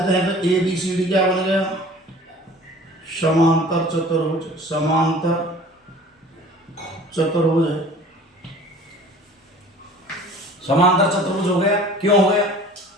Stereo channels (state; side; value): normal; both; correlation 0.46